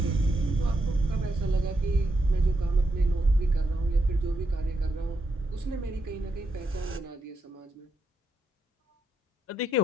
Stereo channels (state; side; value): normal; both; correlation 0.82